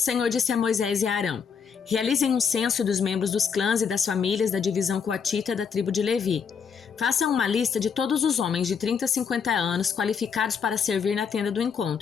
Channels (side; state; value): right; quieter; 6.6 dB